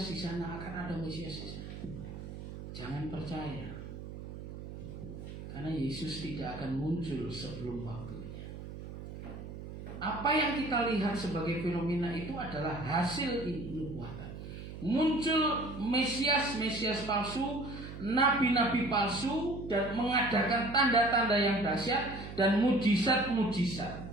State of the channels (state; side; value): noise; right; hum, 10 dB below the sound